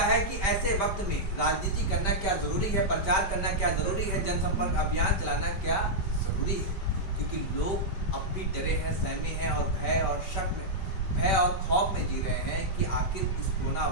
है कि ऐसे वक्त में राजनीति करना क्या जरूरी है, प्रचार करना क्या जरूरी है, जनसंपर्क अभियान चलाना क्या जरूरी है? क्योंकि लोग अब भी डरे हैं, सहमे हैं और भय और खौफ में जी रहे हैं कि आखिर इस कोरोना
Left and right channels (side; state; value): right; late; 5.2 ms